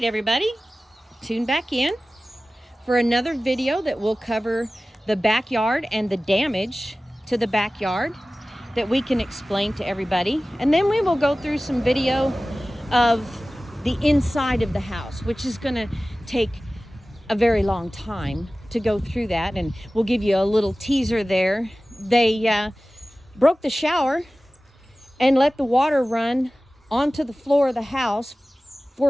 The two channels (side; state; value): both; normal; correlation 0.97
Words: everybody, tune back in for another video that will cover the backyard and the damage to the backyard that we can explain to everybody. And then we will go through some video of the inside of the house, which is going to take a very long time to go through that, and we'll give you a little teaser there. They broke the shower and let the water run onto the floor of the house